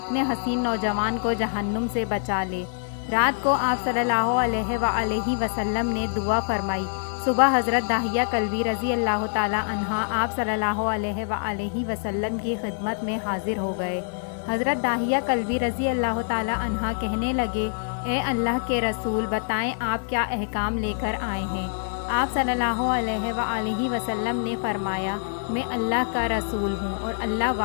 حسین نوجوان کو جہنم سے بچا لے۔ رات کو آپ صلی اللہ علیہ وآلہ وسلم نے دعا فرمائی۔ صبح حضرت داہیہ کلبی رضی اللہ تعالی عنہ آپ صلی اللہ علیہ وآلہ وسلم کی خدمت میں حاضر ہو گئے۔ حضرت داہیہ کلبی رضی اللہ تعالی عنہ کہنے لگے، اے اللہ کے رسول، بتائیں آپ کیا احکام لے کر آئے ہیں؟ آپ صلی اللہ علیہ وآلہ وسلم نے فرمایا، میں اللہ کا رسول ہوں اور اللہ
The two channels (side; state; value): right; silent; 56 dB below the other